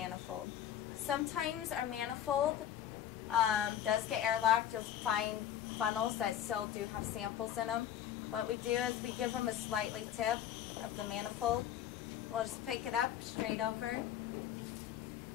Sometimes our manifold does get airlocked. You'll find funnels that still do have samples in them. What we do is we give them a slightly tip of the manifold. We'll just pick it up straight over,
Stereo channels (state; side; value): quieter; right; 10.5 dB